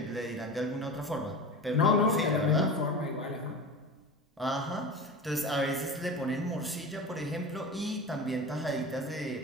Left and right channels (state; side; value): normal; both; correlation 0.30